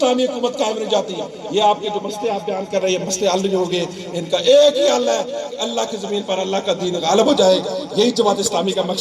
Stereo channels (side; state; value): both; identical; correlation 1.00